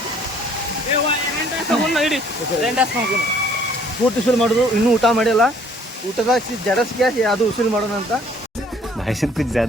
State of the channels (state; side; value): normal; both; correlation 0.59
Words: ಪೂರ್ತಿ ಉಸುಲು ಮಾಡೋದು ಇನ್ನೂ ಊಟ ಮಾಡಿಲ್ಲ ಊಟದಾಗ ಜಡಸ್ಗೆ ಅದು ಉಸುಲು ಮಾಡೋಣ ಅಂತ भाई साहब कुछ